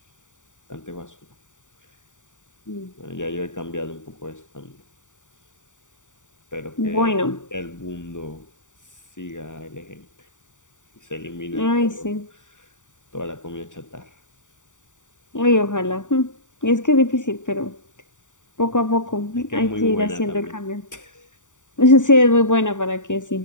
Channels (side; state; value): right; late; 0.86 ms